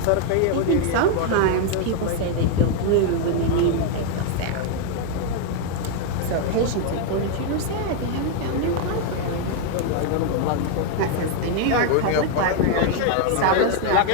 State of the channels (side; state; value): both; different; correlation 0.00